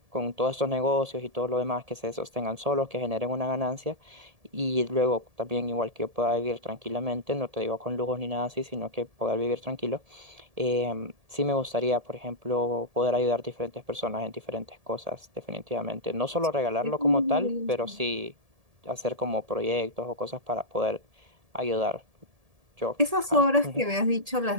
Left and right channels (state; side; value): late; left; 1.7 ms